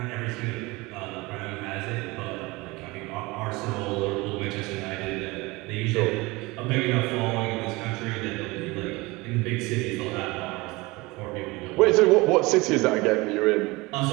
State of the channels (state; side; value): quieter; left; 22.9 dB